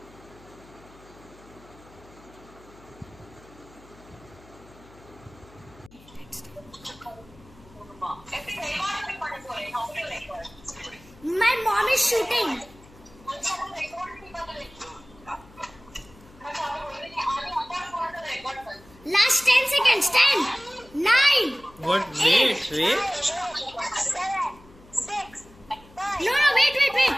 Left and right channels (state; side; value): noise; left; hum, 24 dB below the sound